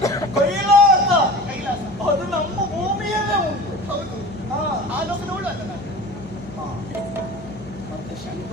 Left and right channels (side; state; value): left; noise; hum, 19 dB below the sound